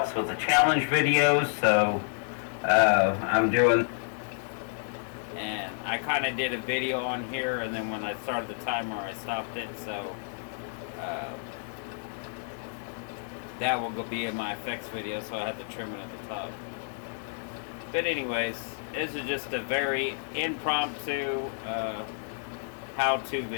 with the challenge videos, so I'm doing, and I kind of did a video on here, and then when I started the timer I stopped it, so that will be in my effects video, so I had to trim it at the top. But anyways, this is just a very impromptu how-to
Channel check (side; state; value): right; silent; digital silence